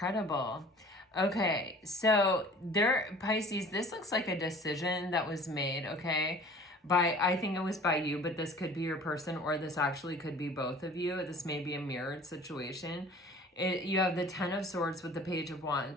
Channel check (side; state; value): both; normal; correlation 0.47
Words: Okay, so Pisces, this looks like a decision that was made, okay? I think it was by you, but this could be your person, or this actually could be both of you. This may be a mirrored situation. You have the Ten of Swords with the Page of